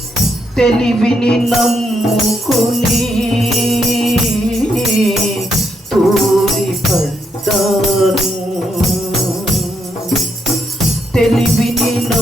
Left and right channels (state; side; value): normal; both; correlation 0.78